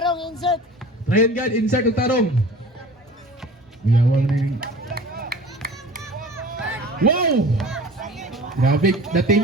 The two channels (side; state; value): both; normal; correlation 0.42